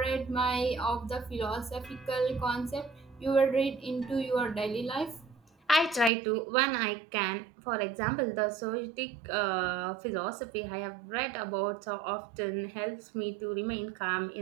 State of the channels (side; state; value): left; drops out; at 6.1 s